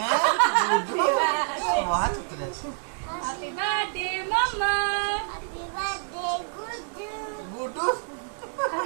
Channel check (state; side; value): silent; left; digital silence